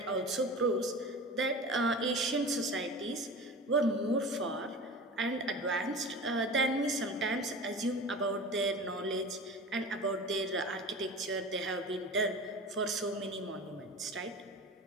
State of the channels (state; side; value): normal; both; correlation 0.34